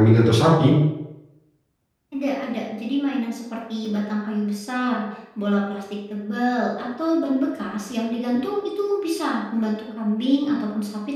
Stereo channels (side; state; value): both; identical; correlation 1.00